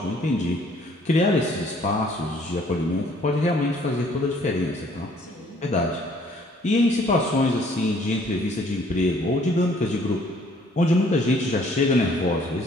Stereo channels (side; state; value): both; normal; correlation 0.60